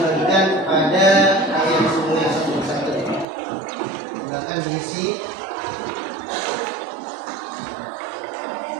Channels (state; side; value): drops out; left; at 3.2 s